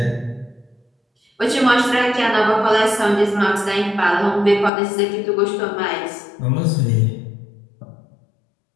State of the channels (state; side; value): drops out; right; at 4.7 s